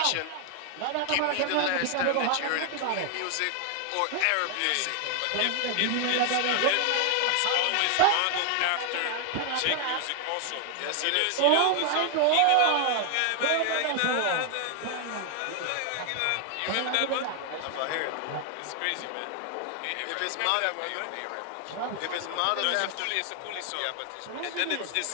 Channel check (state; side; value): different; both; correlation 0.00